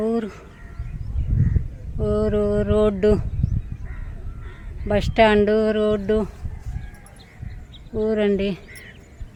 ఊరు. రోడ్డు, బస్ స్టాండు, రోడ్డు, ఊరండి.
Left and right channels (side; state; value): both; identical; correlation 1.00